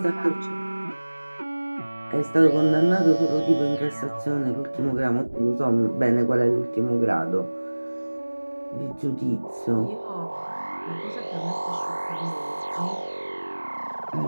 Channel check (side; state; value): both; inverted; correlation -1.00